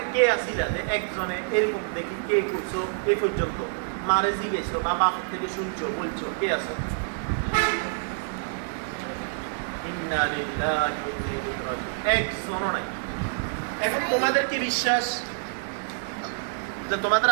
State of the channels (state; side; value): silent; left; 60 dB below the other